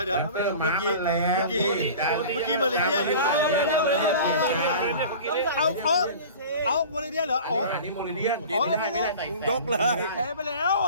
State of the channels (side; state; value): both; inverted; correlation -0.39